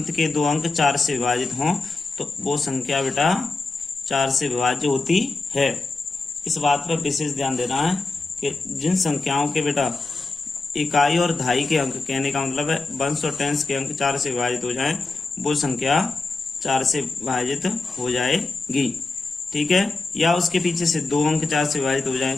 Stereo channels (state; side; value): quieter; right; 3.6 dB